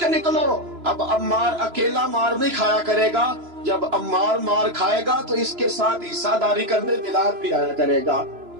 نکلو، اب عمار اکیلا مار نہیں کھایا کرے گا، جب عمار مار کھائے گا تو اس کے ساتھ حصہ داری کرنے بلال بھی آیا کرے گا.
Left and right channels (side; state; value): left; late; 3.0 ms